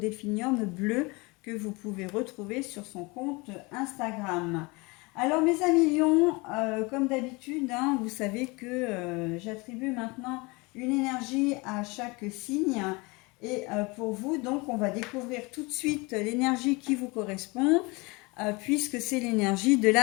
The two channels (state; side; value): quieter; right; 26.1 dB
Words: bleu que vous pouvez retrouver sur son compte Instagram. Alors mes amis lions, comme d'habitude, hein, vous savez que j'attribue maintenant une énergie à chaque signe. Et pour vous, donc, on va découvrir tout de suite l'énergie qui vous correspond, puisque c'est l'énergie de